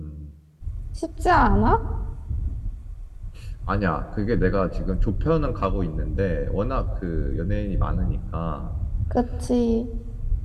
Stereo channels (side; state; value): both; identical; correlation 1.00